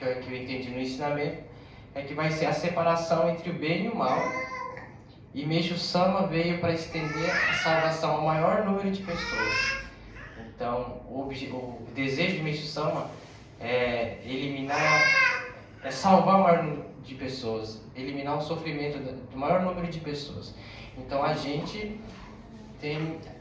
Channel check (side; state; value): both; identical; correlation 1.00